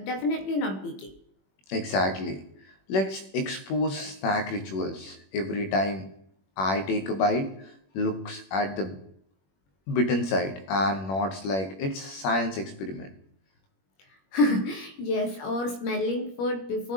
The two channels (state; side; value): late; right; 21 ms